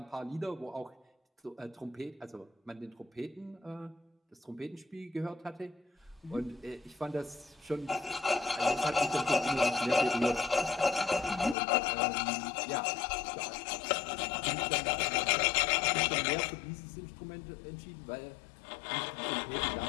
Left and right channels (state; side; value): drops out; right; at 11.6 s